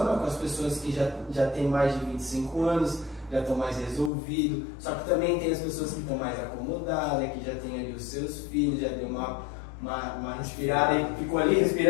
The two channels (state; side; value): drops out; right; at 4.1 s